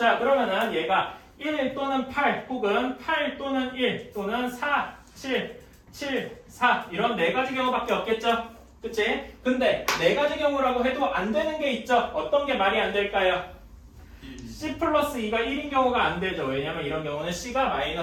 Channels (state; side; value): identical; both; correlation 1.00